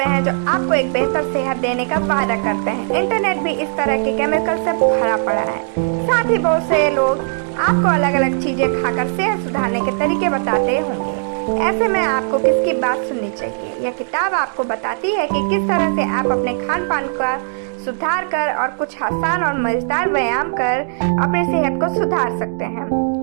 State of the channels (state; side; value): silent; left; digital silence